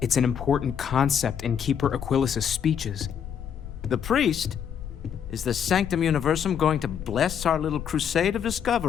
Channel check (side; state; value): right; quieter; 8.2 dB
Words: an important concept in Keeper Aquilas's speeches. The priest? Is the Sanctum Universum going to bless our little crusade of